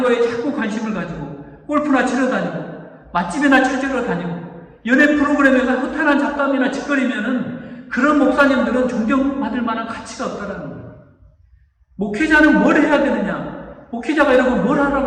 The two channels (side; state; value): both; identical; correlation 1.00